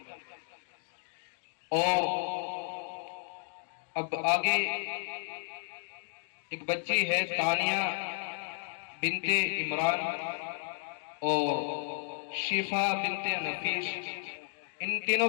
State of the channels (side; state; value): right; silent; digital silence